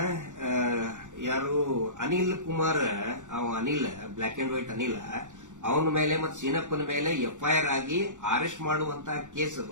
ಯಾರು Anil Kumar, Anil black and white Anil, ಅವನ ಮೇಲೆ ಮತ್ತು ಸೀನಪ್ಪನ ಮೇಲೆ ಎಫ್ಐಆರ್ ಆಗಿ ಅರೆಸ್ಟ್ ಮಾಡುವಂತ ಕೇಸ್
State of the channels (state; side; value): late; left; 0.86 ms